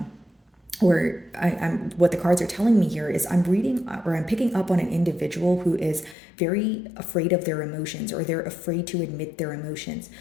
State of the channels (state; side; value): drops out; right; at 6.2 s